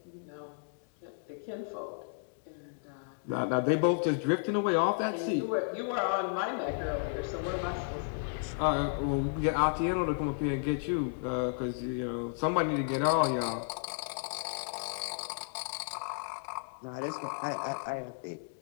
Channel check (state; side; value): silent; right; 55 dB below the other